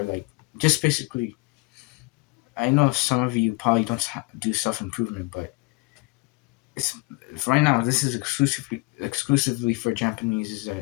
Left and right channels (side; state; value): right; quieter; 26.7 dB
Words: like just basically. I know some of you probably don't do self improvement, but it's right now. This is exclusively for Japanese. Is